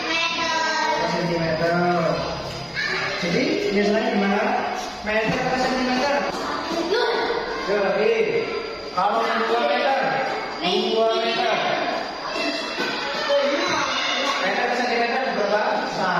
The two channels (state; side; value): identical; both; correlation 1.00